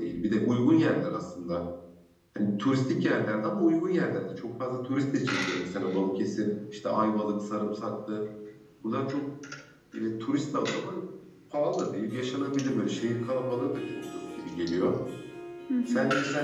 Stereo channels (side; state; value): both; identical; correlation 1.00